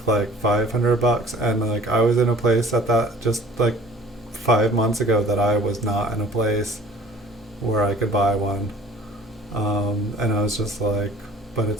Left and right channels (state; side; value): normal; both; correlation 0.50